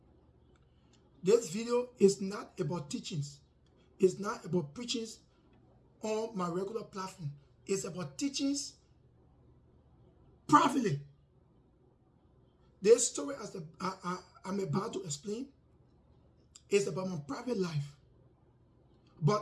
This video is not about teachings. It's not about preachings on my regular platform. It's about teachings privately. This story I'm about to explain is about my private life.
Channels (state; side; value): identical; both; correlation 1.00